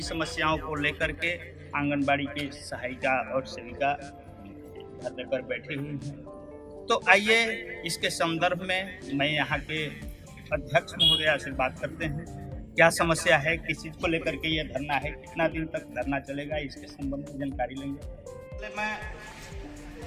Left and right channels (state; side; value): identical; both; correlation 1.00